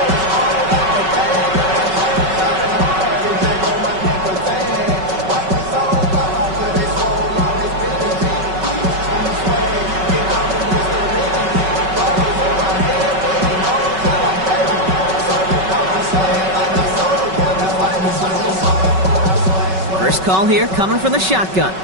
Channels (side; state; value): left; late; 5.3 ms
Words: First call here coming from the shotgun.